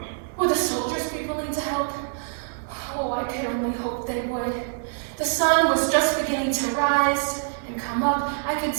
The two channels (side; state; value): left; silent; digital silence